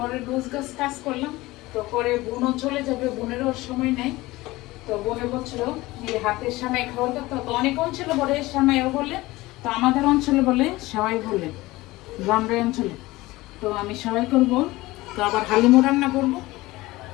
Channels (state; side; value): quieter; right; 19.5 dB